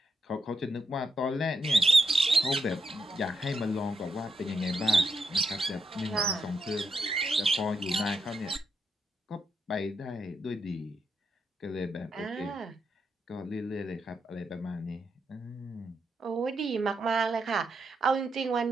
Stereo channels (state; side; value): normal; both; correlation 0.82